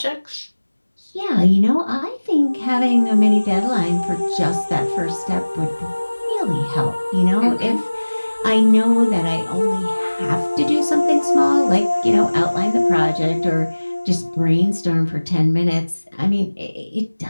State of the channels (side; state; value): both; inverted; correlation -1.00